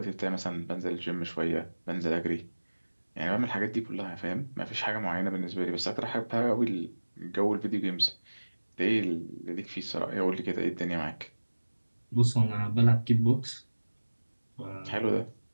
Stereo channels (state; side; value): inverted; both; correlation -1.00